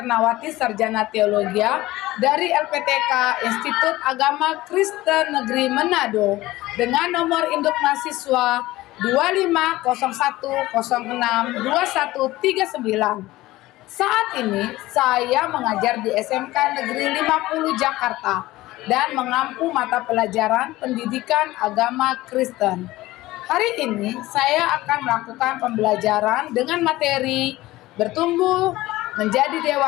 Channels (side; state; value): right; quieter; 17.7 dB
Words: Sarjana Teologia dari LPTK Institut Agama Kristen Negeri Manado dengan nomor induk mahasiswa 2501062139. Saat ini saya mengajar di SMK Negeri 50 Jakarta dan mengampu mata pelajaran pendidikan agama Kristen. Hari ini saya akan melakukan pembelajaran dengan materi bertumbuh menjadi